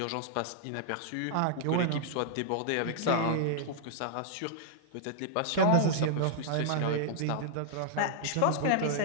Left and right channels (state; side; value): different; both; correlation -0.01